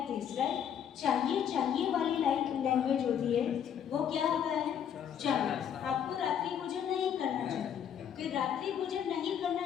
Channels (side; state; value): right; quieter; 8.8 dB